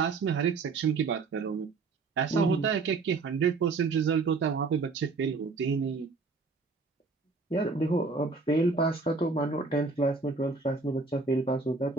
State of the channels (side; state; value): left; quieter; 4.1 dB